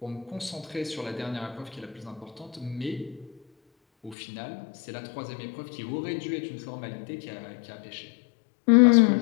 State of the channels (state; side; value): drops out; right; at 4.2 s